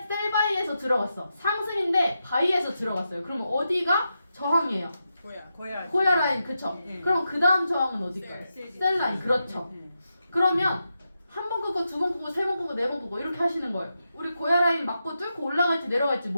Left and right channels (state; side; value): inverted; both; correlation -0.87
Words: 바이에서 들어갔어. 상승인데 바이에서 들어갔어요. 그러면 어디가 저항이에요? 고야. 고야 라인 그쵸? 네. 그럼 그 다음 저항은 어딜까요? 셀 라인 그렇죠. 네. 그러면 한 번 끄고 두 번 끄고 세 번 끄고 네 번 끄고 이렇게 하시는 거예요. 우리 고야 라인 맞고 뚫고 올라갈지 내려갈지